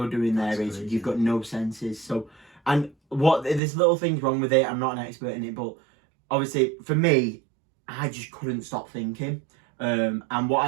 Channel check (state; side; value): drops out; left; at 3.6 s